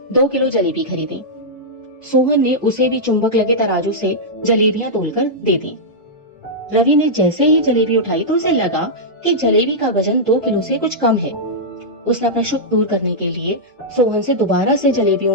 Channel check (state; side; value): normal; both; correlation -0.10